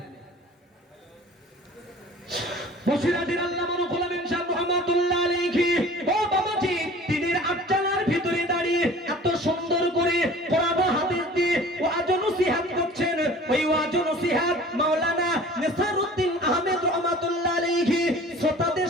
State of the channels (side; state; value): both; normal; correlation 0.45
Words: বসিরাটির আল্লামা রুহুল আমিন সাহেব রহমাতুল্লাহ আলাইহি, ও বাবাজি, টিনের আটচালার ভিতরে দাঁড়িয়ে এত সুন্দর করে কোরআন হাদিস দিয়ে ওয়াজ নসিহত করছেন। ওই ওয়াজ নসিহত মাওলানা নেসারউদ্দিন আহমেদ রহমাতুল্লাহ আলাইহি শ্রোতাদের